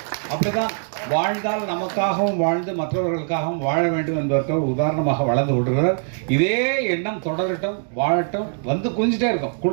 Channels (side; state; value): left; silent; digital silence